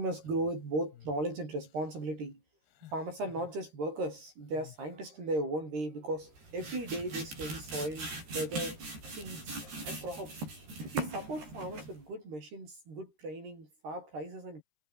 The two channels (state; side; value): late; left; 13 ms